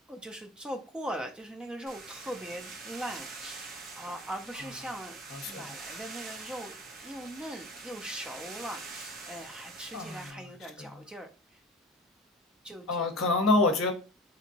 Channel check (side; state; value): both; normal; correlation 0.38